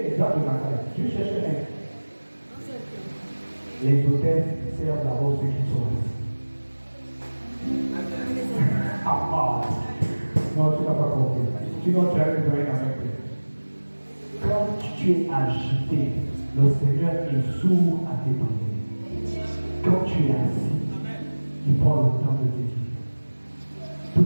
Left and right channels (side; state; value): both; inverted; correlation -1.00